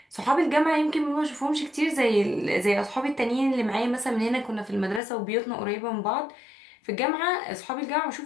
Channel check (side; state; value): right; drops out; at 5.0 s